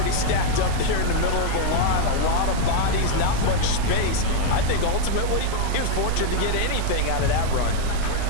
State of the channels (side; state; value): both; different; correlation 0.00